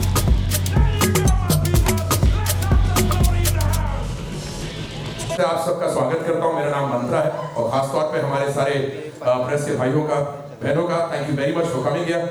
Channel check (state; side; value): identical; both; correlation 1.00